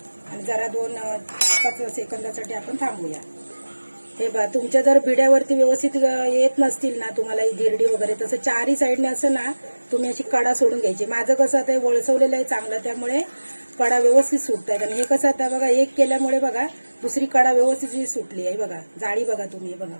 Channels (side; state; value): both; inverted; correlation -1.00